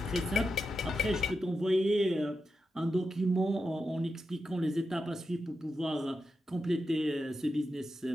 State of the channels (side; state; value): both; normal; correlation 0.89